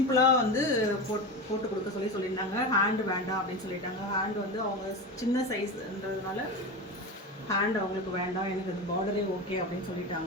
வந்து போட்டு கொடுக்க சொல்லியிருந்தாங்க. ஹேண்டு வேண்டாம் அப்படின்னு சொல்லிட்டாங்க. ஹேண்டு வந்து அவங்க சின்ன சைஸ்ன்றதுனால ஹேண்ட் அவங்களுக்கு வேண்டாம், எனக்கு அது பார்டரே ஓகே அப்படின்னு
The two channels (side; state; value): both; normal; correlation 0.23